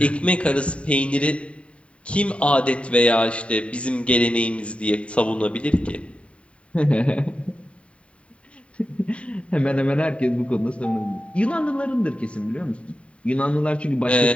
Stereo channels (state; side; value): late; right; 0.062 ms